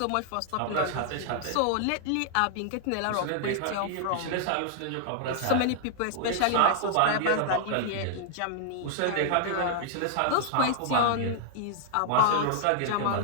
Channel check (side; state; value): both; different; correlation -0.01